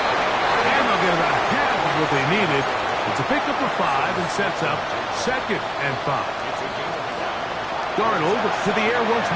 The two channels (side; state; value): both; identical; correlation 1.00